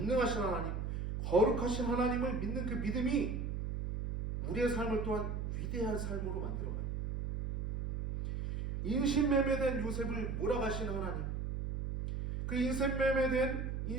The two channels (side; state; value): right; noise; hum, 3 dB below the sound